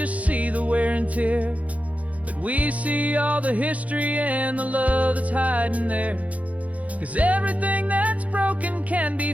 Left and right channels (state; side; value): late; left; 0.068 ms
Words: see the wear and tear, but we see all the history and the love that's hiding there. 'Cause everything that's broken can